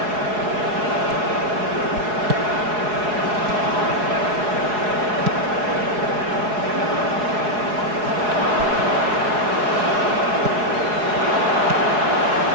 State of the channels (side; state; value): left; late; 4.7 ms